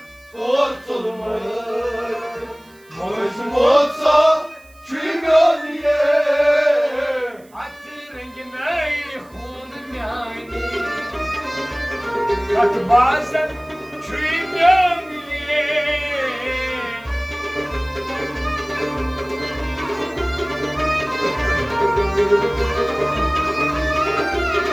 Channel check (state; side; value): noise; right; hiss, 29 dB below the sound